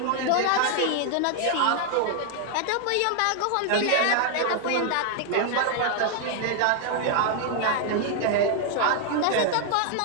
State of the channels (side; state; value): both; different; correlation 0.00